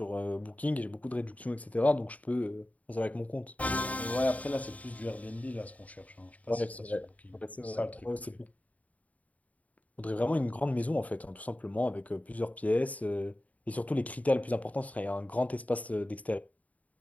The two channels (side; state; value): right; late; 0.070 ms